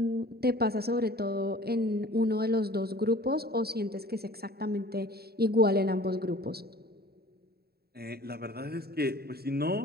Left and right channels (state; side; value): late; left; 0.46 ms